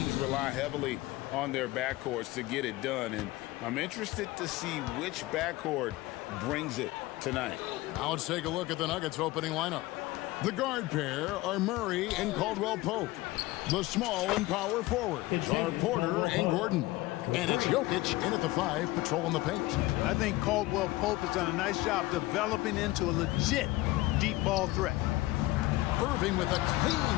rely heavily on their backcourts to get it done, and I'm interested to see which backcourt brings it tonight. Now let's take a look at the Nuggets opening lineup. The guard pair are Murray and Caldwell Pope. The small and power forwards are Porter and Gordon. And it's Jokic in at the 5, patrolling the paint. I think Caldwell Pope has done a nice job developing into a legit deep ball threat. Irving with a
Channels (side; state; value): right; quieter; 18.8 dB